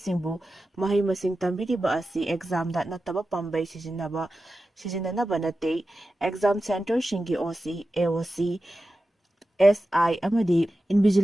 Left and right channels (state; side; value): normal; both; correlation 0.93